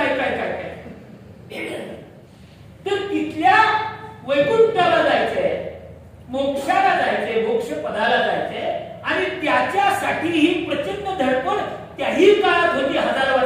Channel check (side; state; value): both; identical; correlation 1.00